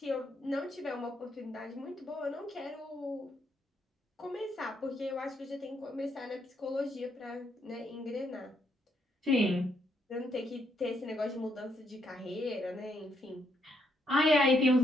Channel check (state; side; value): normal; both; correlation 0.75